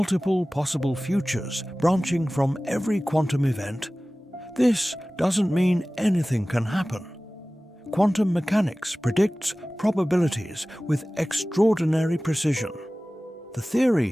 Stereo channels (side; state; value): both; normal; correlation 0.97